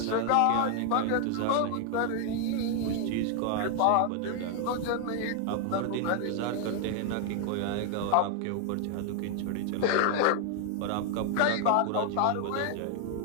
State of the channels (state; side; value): different; both; correlation 0.00